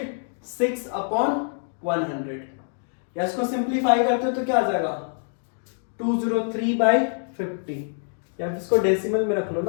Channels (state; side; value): silent; right; digital silence